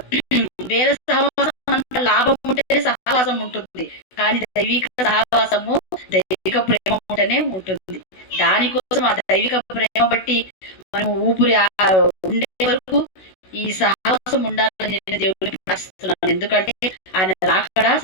వేరే సహవాసం అంత లాభం ఉంటేనే సహవాసం ఉంటుంది, కానీ దైవిక సహవాసము, దైవిక ప్రేమ ఉంటేనే ఉంటుంది. దానికోసం ఆ దైవిక ప్రేమ బట్టి మనం ఊపిరి ఉండే వరకు ఈ సాహసం ఉండాలని నేను దేవుడిని ప్రార్థిస్తున్నాను. ఎందుకంటే ఆయన రాకడా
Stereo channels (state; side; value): late; right; 16 ms